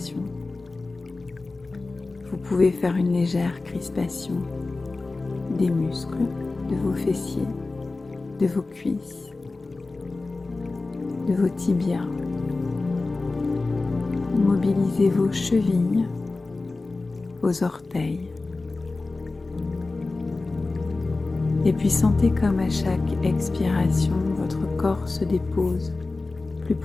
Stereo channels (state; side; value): quieter; right; 3.5 dB